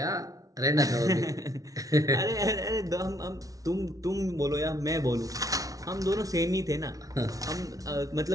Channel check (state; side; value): late; left; 0.17 ms